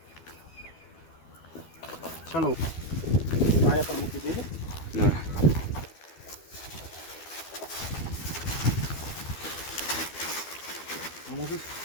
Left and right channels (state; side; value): late; right; 12 ms